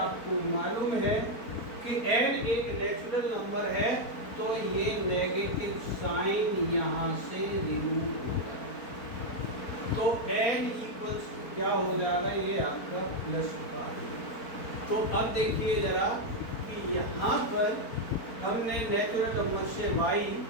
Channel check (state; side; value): late; right; 4.4 ms